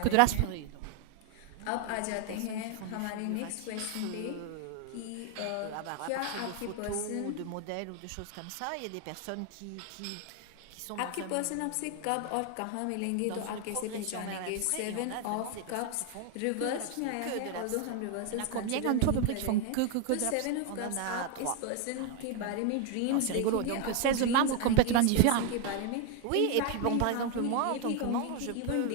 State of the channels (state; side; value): different; both; correlation 0.01